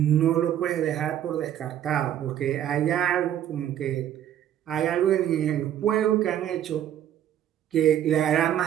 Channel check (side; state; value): left; quieter; 10.9 dB